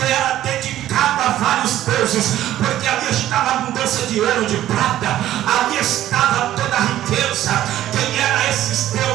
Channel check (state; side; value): quieter; left; 13.0 dB